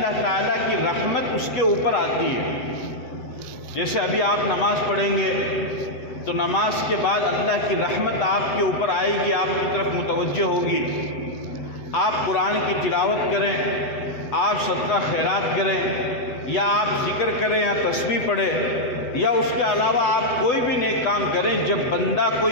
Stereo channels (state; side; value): late; right; 8.1 ms